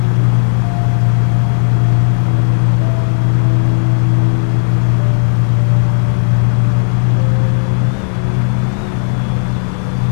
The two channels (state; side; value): silent; right; 62 dB below the other